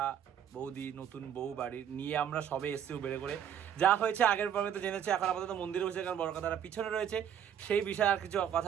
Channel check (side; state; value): left; quieter; 9.2 dB